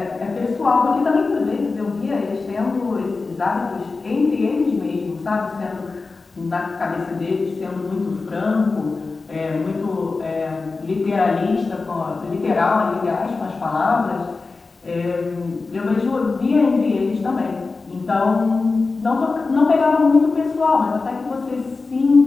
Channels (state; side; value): quieter; right; 4.0 dB